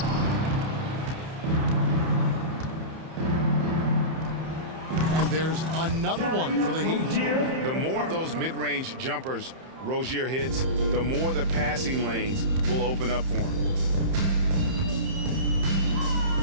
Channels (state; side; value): late; left; 31 ms